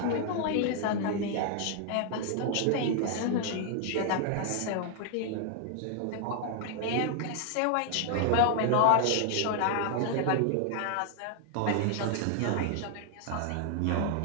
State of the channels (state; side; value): different; both; correlation 0.00